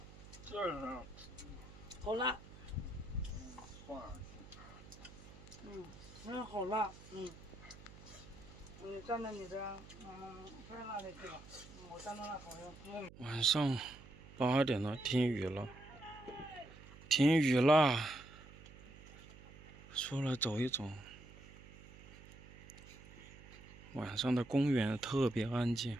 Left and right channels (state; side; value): noise; right; hum, 18 dB below the sound